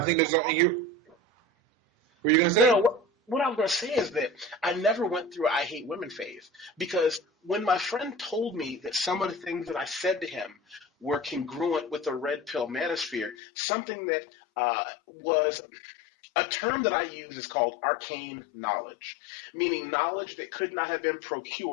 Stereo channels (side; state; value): right; drops out; at 13.4 s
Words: there's something here. What were you going to say? No, what I was going to say is that I never went through I hate women phase because when my friend told me that some of the things that I said to him were congruent with the red pill manosphere, something that was a term that I use is called arcane knowledge, meaning knowledge that could not have been